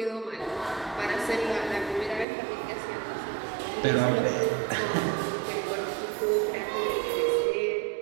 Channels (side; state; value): left; drops out; at 2.2 s